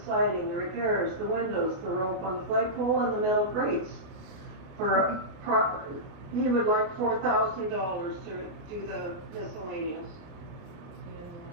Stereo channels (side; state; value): left; late; 29 ms